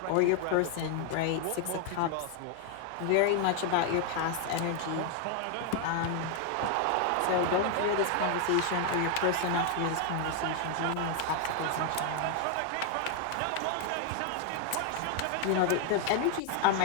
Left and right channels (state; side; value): different; both; correlation 0.00